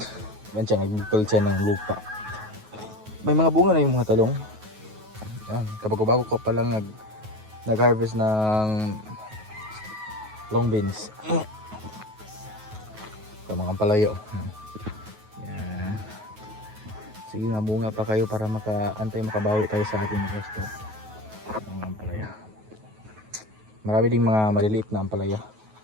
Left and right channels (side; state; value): left; late; 9.3 ms